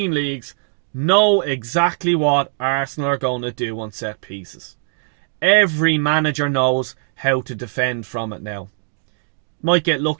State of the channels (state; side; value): silent; left; 65 dB below the other